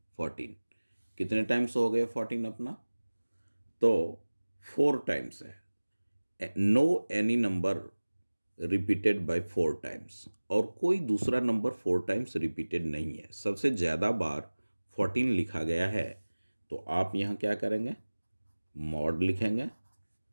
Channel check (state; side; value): inverted; both; correlation -1.00